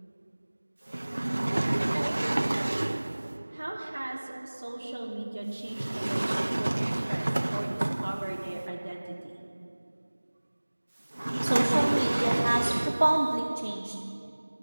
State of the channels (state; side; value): inverted; both; correlation -1.00